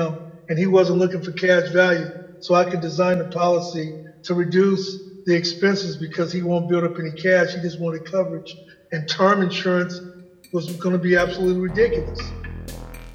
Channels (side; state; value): both; identical; correlation 1.00